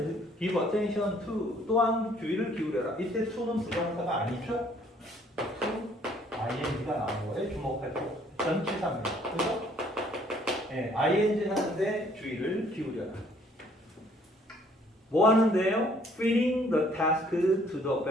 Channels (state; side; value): normal; both; correlation 0.61